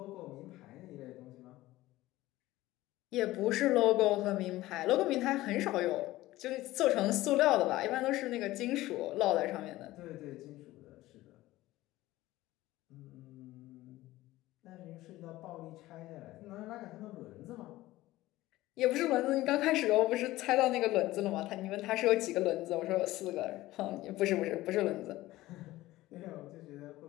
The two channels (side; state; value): right; quieter; 17.1 dB